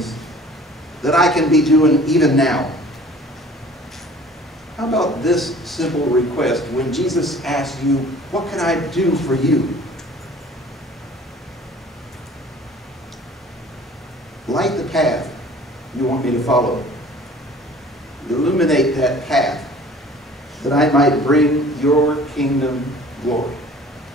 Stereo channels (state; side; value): normal; both; correlation 0.48